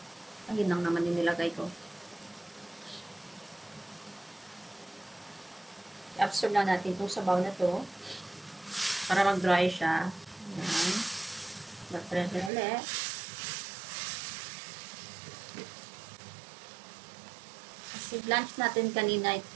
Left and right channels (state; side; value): drops out; left; at 12.5 s